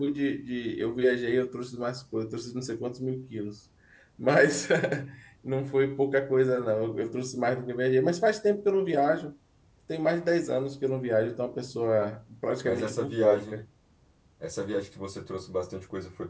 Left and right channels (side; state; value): both; identical; correlation 1.00